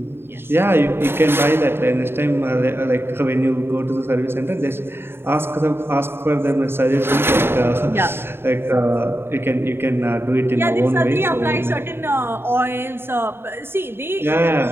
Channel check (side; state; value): left; late; 0.11 ms